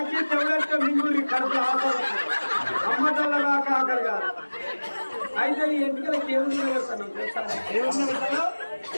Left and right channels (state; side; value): inverted; both; correlation -1.00